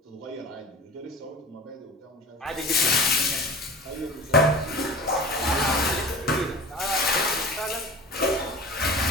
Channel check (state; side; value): normal; both; correlation 0.36